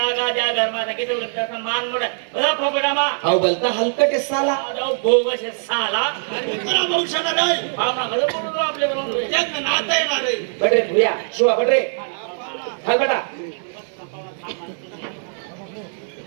द्या घरमाता किती तसं मान मोठा बघा फोकटा मा अहो बोलता हलकट आहे साला. बोगस साला आणि तुला भविष्य रे पाहुणा कसं बोलून आपल्या बरोबर त्यांना नातं आहे ना रे बडरे भुया शिवा बडरे हाल बेटा.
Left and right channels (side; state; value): left; silent; 62 dB below the other